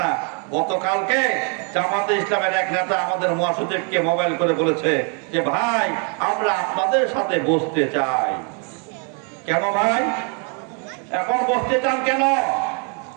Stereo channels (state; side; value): quieter; left; 38.7 dB